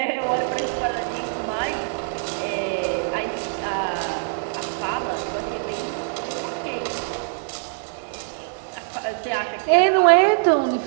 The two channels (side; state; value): left; silent; digital silence